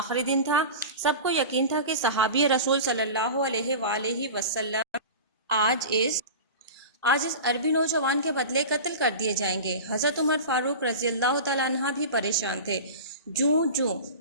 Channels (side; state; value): both; inverted; correlation -0.31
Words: دن تھا۔ سب کو یقین تھا کہ صحابی رسول صلی اللہ علیہ وآلہ وسلم آج اس عربی نوجوان کے بدلے قتل کر دیے جائیں گے۔ حضرت عمر فاروق رضی اللہ تعالیٰ عنہ بھی پریشان تھے۔ جوں